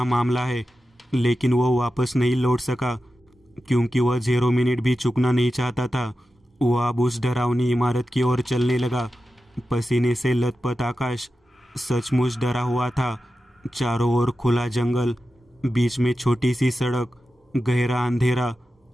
मामला है, लेकिन वह वापस नहीं लौट सका क्योंकि वह 0 मिनट भी चुकना नहीं चाहता था। वह अब उस डरावनी इमारत की ओर चलने लगा। पसीने से लथपथ आकाश सचमुच डरा हुआ था। चारों ओर खुला जंगल, बीच में छोटी सी सड़क, गहरा अंधेरा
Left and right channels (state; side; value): normal; both; correlation 0.92